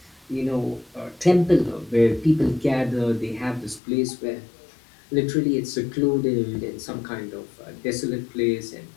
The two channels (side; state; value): right; drops out; at 3.8 s